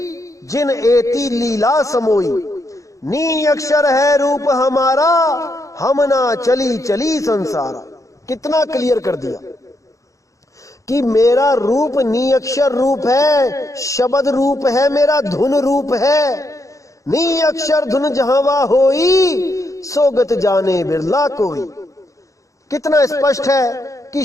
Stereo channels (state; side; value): late; right; 0.16 ms